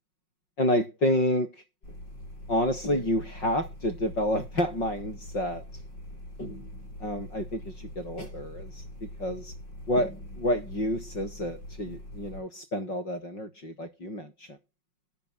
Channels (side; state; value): right; late; 5.5 ms